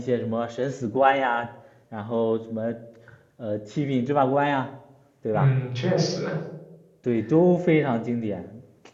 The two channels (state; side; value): identical; both; correlation 1.00